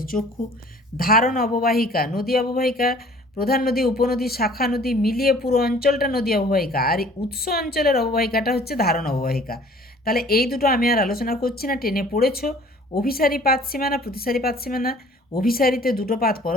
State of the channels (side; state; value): both; normal; correlation 0.52